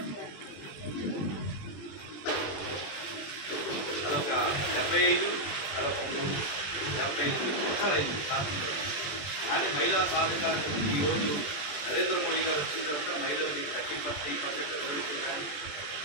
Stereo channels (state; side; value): late; right; 20 ms